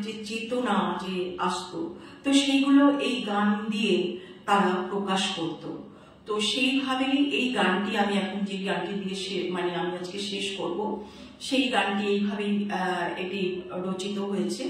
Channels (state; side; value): identical; both; correlation 1.00